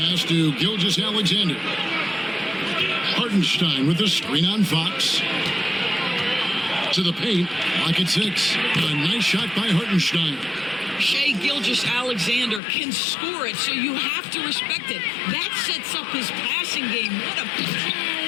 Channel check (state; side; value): drops out; right; at 12.6 s